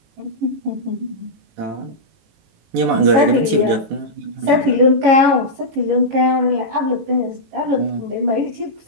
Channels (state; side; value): late; left; 18 ms